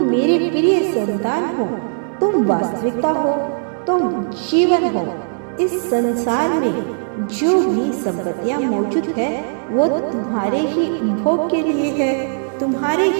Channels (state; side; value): silent; left; 63 dB below the other